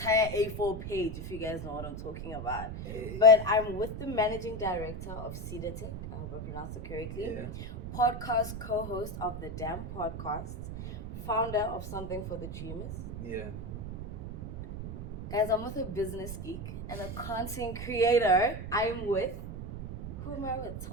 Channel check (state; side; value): noise; right; rumble, 7 dB below the sound